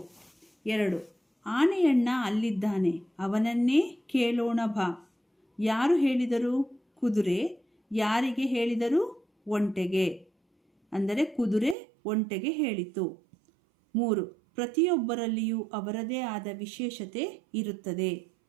2. ಆನೆಯಣ್ಣ ಅಲ್ಲಿದ್ದಾನೆ, ಅವನನ್ನೇ ಕೇಳೋಣ ಬಾ. ಯಾರು ಹೇಳಿದರು? ಕುದುರೆ. ಯಾರಿಗೆ ಹೇಳಿದರು? ಒಂಟೆಗೆ. ಅಂದರೆ ಕುದುರೆ ಒಂಟೆಗೆ ಹೇಳಿತು. 3. ಪ್ರತಿಯೊಬ್ಬರಲ್ಲಿಯೂ ಅವರದೇ ಆದ ವಿಶೇಷತೆ ಇರುತ್ತದೆ.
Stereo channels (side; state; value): left; drops out; at 11.8 s